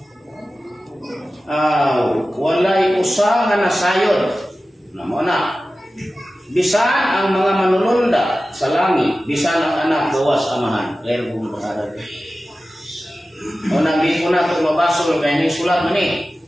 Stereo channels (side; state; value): both; normal; correlation 0.95